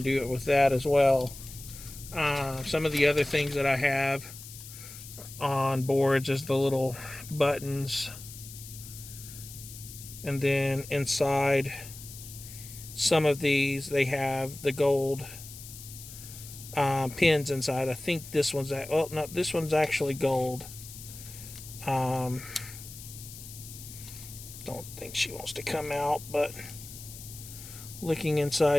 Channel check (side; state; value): left; noise; hiss, 14 dB below the sound